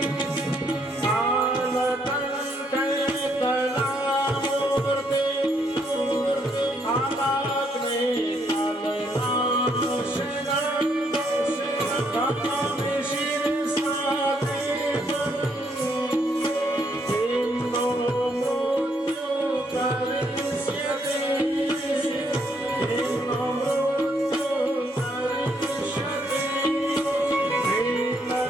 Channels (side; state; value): both; normal; correlation 0.72